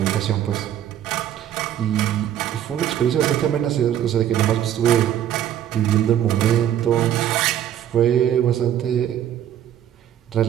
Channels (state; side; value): quieter; left; 10.8 dB